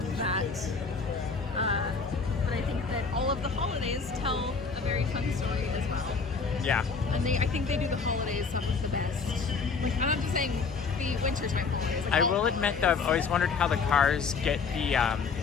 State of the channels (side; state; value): right; quieter; 5.0 dB